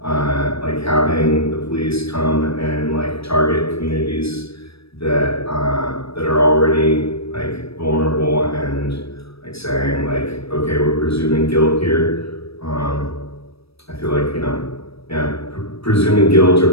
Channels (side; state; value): right; late; 0.77 ms